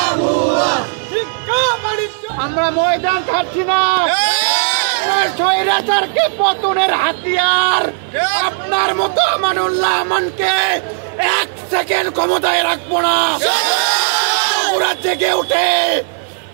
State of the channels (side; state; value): left; silent; 60 dB below the other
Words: শিক্ষা বাণিজ্য। আমরা ময়দান ছাড়ছি না, স্বৈরাচারকে পতনের হাতিয়ার আপনার মতো আমানুল্লাহ আমানকে 1 সেকেন্ড ক্ষমতায় রাখবো না। বগুড়া জেগে উঠে